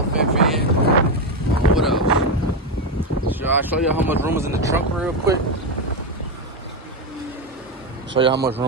What else? Should I show you how much room is in the trunk real quick? Show you how much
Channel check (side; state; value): both; normal; correlation 0.10